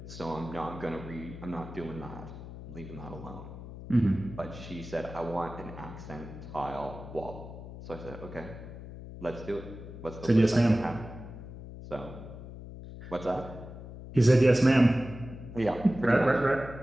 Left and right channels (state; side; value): noise; left; hum, 12 dB below the sound